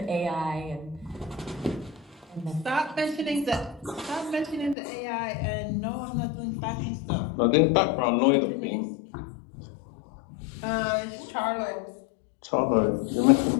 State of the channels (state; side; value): drops out; right; at 4.8 s